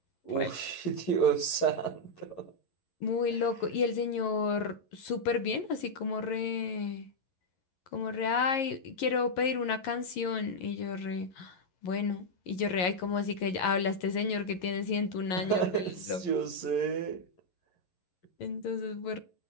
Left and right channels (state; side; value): late; right; 11 ms